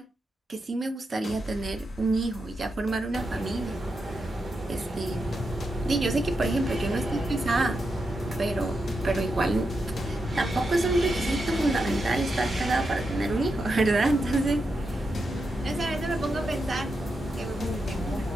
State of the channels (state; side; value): normal; both; correlation 0.86